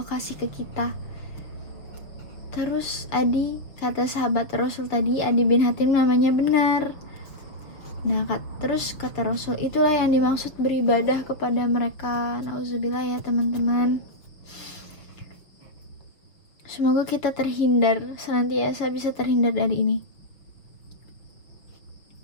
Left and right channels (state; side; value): late; right; 6.0 ms